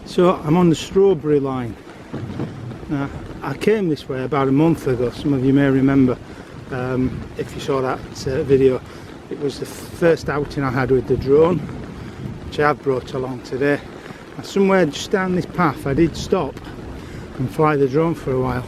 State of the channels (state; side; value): identical; both; correlation 1.00